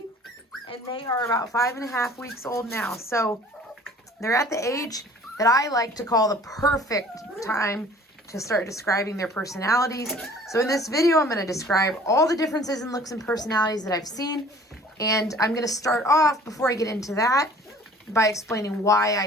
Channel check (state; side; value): normal; both; correlation 0.50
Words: and they are about 5.5 weeks old now. So they're at the age that I like to call the perfect time to start describing their personalities. So in this video, I'm going to describe all the differences in looks and personalities that I've seen. And I'm going to start off, before I get into that, by explaining why